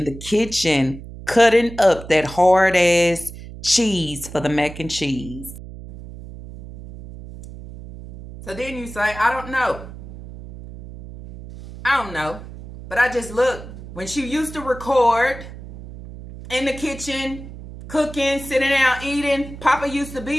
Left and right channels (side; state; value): right; noise; hum, 14 dB below the sound